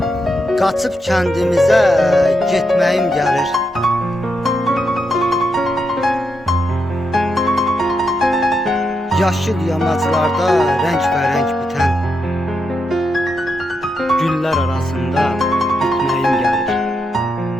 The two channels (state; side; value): normal; both; correlation 0.83